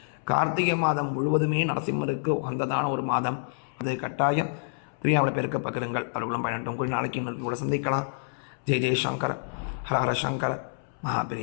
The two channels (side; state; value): right; silent; 60 dB below the other